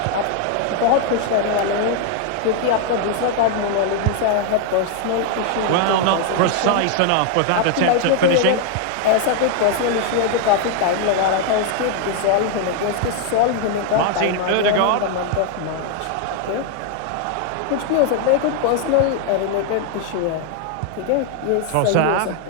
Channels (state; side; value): different; both; correlation 0.00